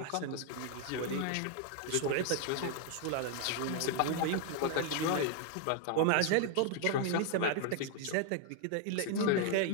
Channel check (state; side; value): different; both; correlation 0.00